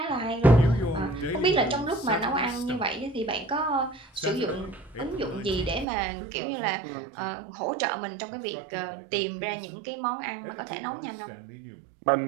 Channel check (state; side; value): drops out; left; at 5.9 s